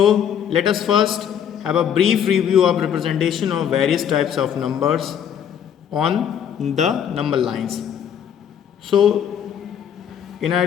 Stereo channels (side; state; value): right; quieter; 8.7 dB